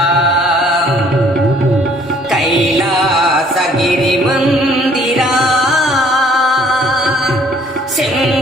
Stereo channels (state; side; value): normal; both; correlation 0.59